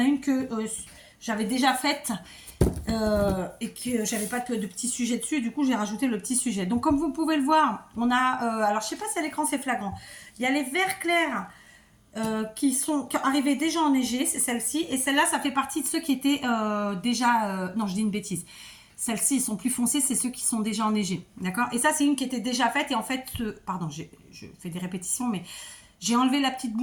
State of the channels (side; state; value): both; identical; correlation 1.00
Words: une que j'avais déjà faite. Et que j'avais pas de petit sujet dessus, du coup j'ai rajouté le petit sujet. Donc comme vous pouvez le voir, on a, alors je sais pas si à l'écran c'est flagrant, il y a les verts clairs qui arrivaient déjà enneigés, c'est celle-ci, et celle-là ça fait partie de ceux qui étaient déjà, non je dis une bêtise, celles-ci ils sont plus foncés, c'est ceux qui sont déjà enneigés, d'accord. Et ça c'est une qui était déjà faite, et en fait, pardon, je fais des répétitions, mais j'ai enlevé la petite